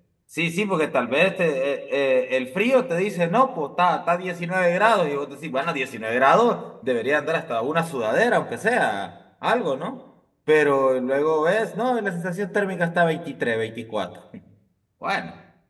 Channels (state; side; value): identical; both; correlation 1.00